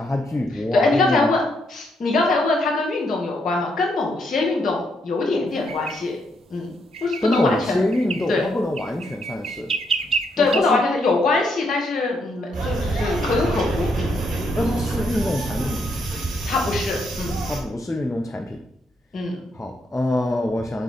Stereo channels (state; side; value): normal; both; correlation 0.76